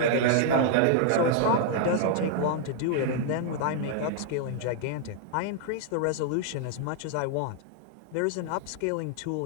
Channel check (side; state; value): both; different; correlation 0.00